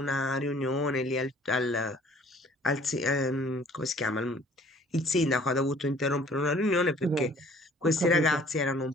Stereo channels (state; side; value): normal; both; correlation 0.55